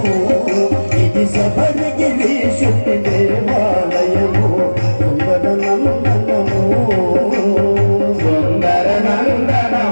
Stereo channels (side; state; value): both; inverted; correlation -1.00